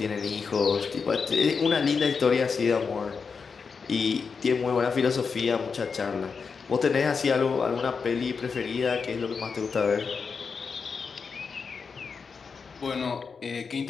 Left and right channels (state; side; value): quieter; right; 5.4 dB